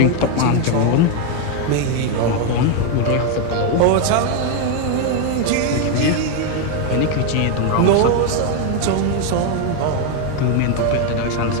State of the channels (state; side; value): different; both; correlation 0.01